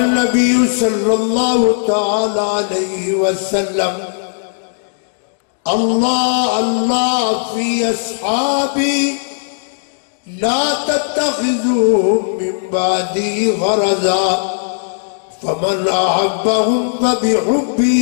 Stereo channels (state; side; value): silent; right; digital silence